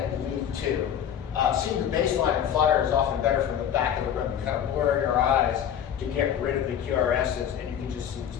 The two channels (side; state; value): right; quieter; 9.3 dB